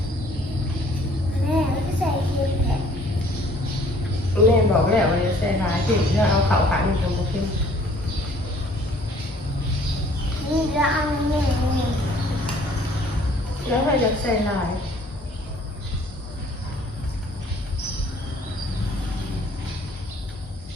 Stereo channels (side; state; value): both; normal; correlation 0.57